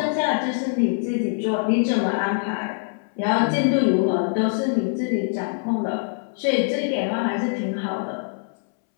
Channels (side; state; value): right; silent; 63 dB below the other